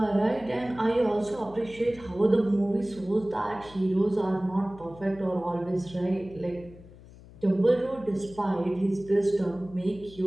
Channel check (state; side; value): noise; left; hum, 20 dB below the sound